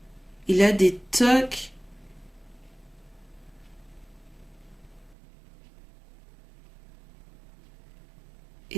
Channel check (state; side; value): drops out; left; at 5.2 s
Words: Il a des tocs.